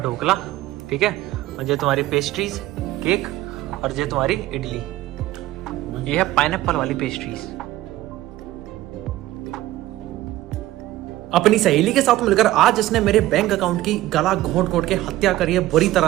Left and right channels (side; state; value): left; quieter; 15.9 dB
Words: ठीक है, और ये तुम्हारी पेस्ट्रीज केक, और ये तुम्हारी इडली। ये है पाइनएप्पल वाली पेस्ट्रीज। अपनी सहेली के साथ मिलकर आज इसने मेरे बैंक अकाउंट की गला घोंट घोंट के हत्या करी है बुरी